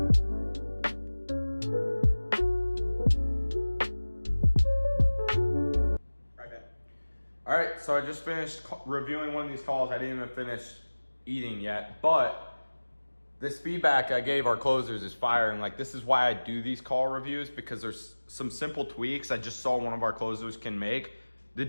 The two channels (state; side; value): inverted; both; correlation -1.00